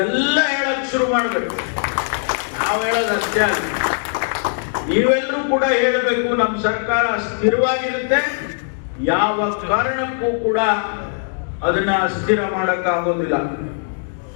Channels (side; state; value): right; silent; digital silence